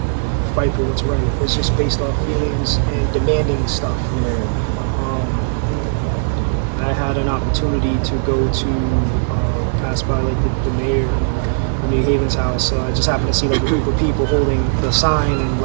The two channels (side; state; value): left; silent; 63 dB below the other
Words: fight for what's right. It's just based off feelings and demanding stuff. I had an opportunity to go to pass by like the mayor of New Haven's house. I just happened to see like a group of people holding the sign and